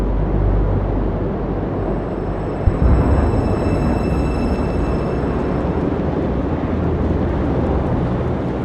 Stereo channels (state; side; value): identical; both; correlation 1.00